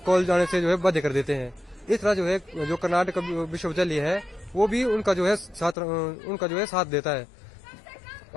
कॉलेज जाने से जो है बाध्य कर देते हैं। इस तरह जो है जो कर्नाटक विश्वविद्यालय है वो भी उनका जो है साथ देता है।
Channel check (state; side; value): drops out; right; at 5.8 s